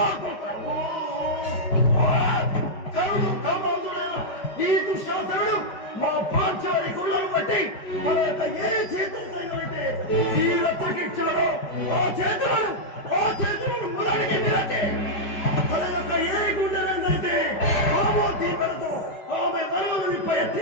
కరుడు కామాంతుడైన ఈ దుశ్శాసనుడు మా పాంచాలి కులం బట్టి తన యొక్క ఏ చేతులైతే ఈ రక్తకిచ్చాడో ఆ చేతులను మొదటికి విరచి తన యొక్క ఏ గుండెలైతే ఆమో దీపలతో ఆమె మరణాన్ని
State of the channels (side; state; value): right; late; 5.1 ms